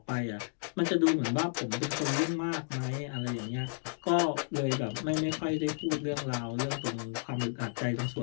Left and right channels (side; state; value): right; silent; digital silence